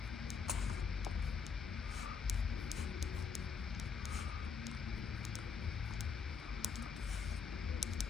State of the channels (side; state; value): right; quieter; 5.9 dB